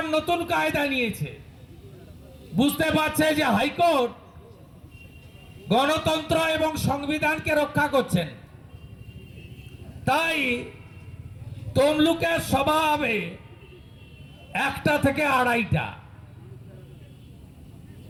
নতুন কায়দা নিয়েছে, বুঝতে পারছে যে হাইকোর্ট গণতন্ত্র এবং সংবিধানকে রক্ষা করছেন। তাই তমলুকের সভা হবে 1টা থেকে 2:30টা,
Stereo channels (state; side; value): identical; both; correlation 1.00